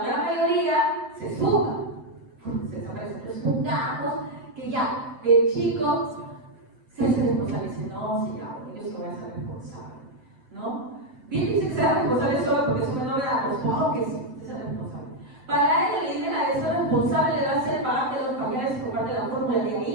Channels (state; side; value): late; left; 7.8 ms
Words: gran mayoría se suma, se desaparece. Pero supongamos que ya, el chico se hace responsable y dice, no, sí, ya, porque yo se voy a ser responsable, ¿no? Bien dice que sea responsable solo porque es una novedad, pues claro que sí, se sea responsable. Para él la idea de ser responsable le va a ser pagarte los pañales y comprarte la fórmula, de